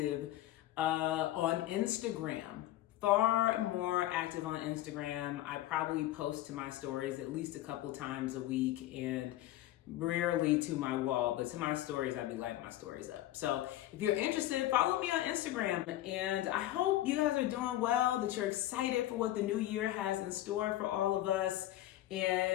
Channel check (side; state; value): right; quieter; 14.6 dB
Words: on Instagram. far more active on Instagram. I probably post to my stories at least a couple times a week, and rarely to my wall, but to my stories, I'd be lighting my stories up. So if you're interested, follow me on Instagram. And I hope you guys are doing well, that you're excited for what the new year has in store for all of us,